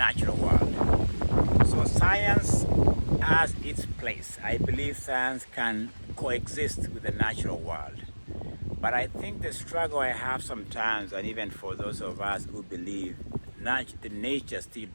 world. So science has its place. I believe science can coexist with the natural world. But I think the struggle I have sometimes, and even for those of us who believe the nature still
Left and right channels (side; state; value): both; inverted; correlation -1.00